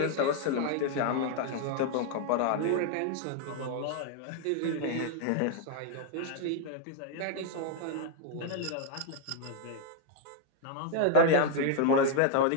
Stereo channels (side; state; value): both; different; correlation 0.00